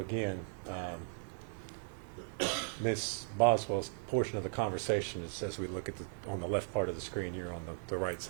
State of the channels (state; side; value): silent; left; 53 dB below the other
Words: again, Ms. Boswell's portion of the conversation is as we look at on the left part of the screen here on the right